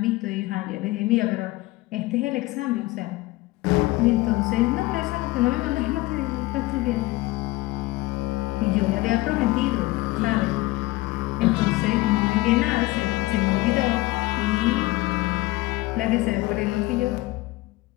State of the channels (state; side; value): quieter; right; 19.7 dB